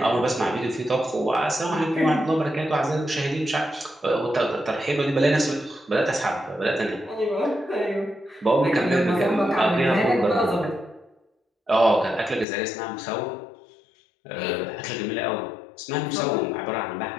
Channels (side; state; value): right; drops out; at 12.5 s